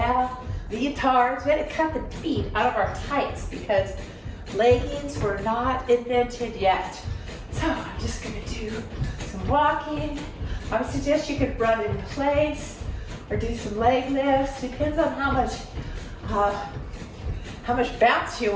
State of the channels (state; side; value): identical; both; correlation 1.00